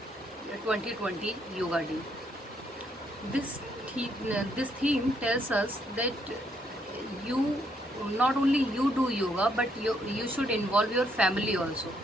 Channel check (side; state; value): both; normal; correlation 0.72